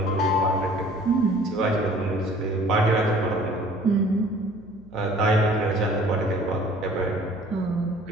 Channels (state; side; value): noise; right; hum, 25 dB below the sound